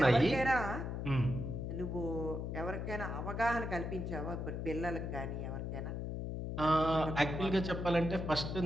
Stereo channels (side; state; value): left; noise; hum, 4 dB below the sound